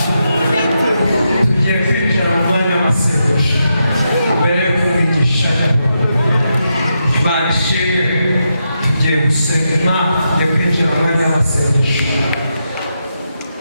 tugiye kwinjira mu mwanya w'amasengesho mbere yo kumwigisha Imana ishimwe tugiye gusenga tugiye kwinjira mu mwanya w'amasengesho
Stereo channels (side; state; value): both; inverted; correlation -0.85